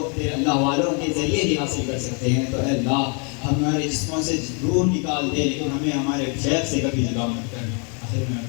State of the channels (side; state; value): right; quieter; 37.2 dB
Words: تیرے اللہ والوں کے ذریعے ہی حاصل کر سکتے ہیں۔ تو اے اللہ ہمارے جسموں سے روح نکال دے لیکن ہمیں ہمارے شیخ سے کبھی جدا مت کر۔ آخر میں